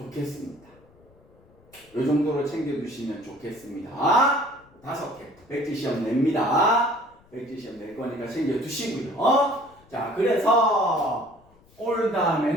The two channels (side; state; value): left; noise; rumble, 29 dB below the sound